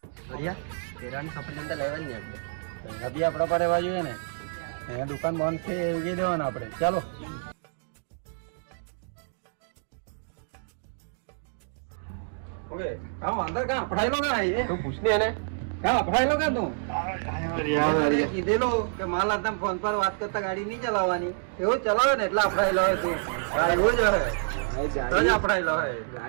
હરિયા, કેળાની સફરજન તો લેવાની ને આપણે. બી આપણા પર રહેવા જોઈએ ને. અહીંયા દુકાન બંધ છે એવી દેવાનું આપણે. ચાલો. ઓકે કામ અંદર કાં પડાયેલો કાં એ તું પૂછને એને. કાં પડાયેલો કાં તું કીધેલો કે માલ હાથે ફોન પર વાત કરતા ગાડી નહીં ચલાવવાની. એવું ચલાવે ને એટલે આપડાયેલો હોય તું. એવું જ હોય તો જ આપડાયેલો હોય.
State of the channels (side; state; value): left; silent; digital silence